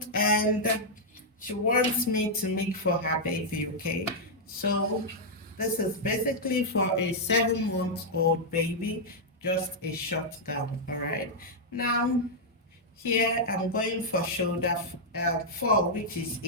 and she wants me to make for her baby. Okay, so this is basically for a 7-month-old baby, just a short gown. All right, now here I'm going for shoulder 4, which is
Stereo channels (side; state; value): both; normal; correlation -0.05